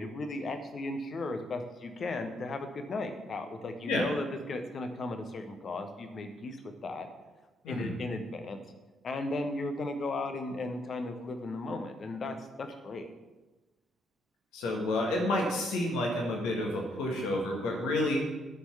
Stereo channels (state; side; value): normal; both; correlation 0.74